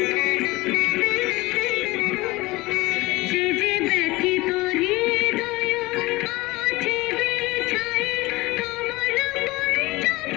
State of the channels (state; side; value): quieter; right; 21.0 dB